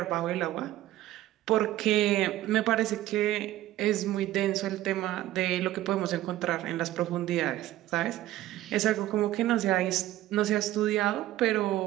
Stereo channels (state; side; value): quieter; left; 14.7 dB